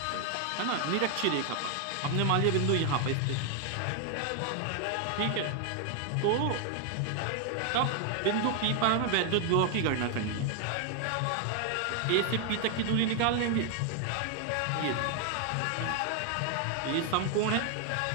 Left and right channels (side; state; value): both; different; correlation 0.00